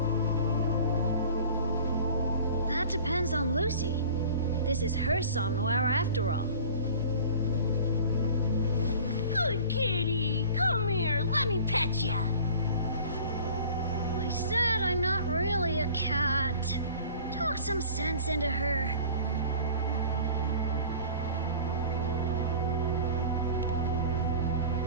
That depends on Lucy. This is her somnowhere after all. Good kitty, come here, let me pet ya. I said I'm not really a cat. Talk some sense into her.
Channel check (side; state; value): both; inverted; correlation -0.43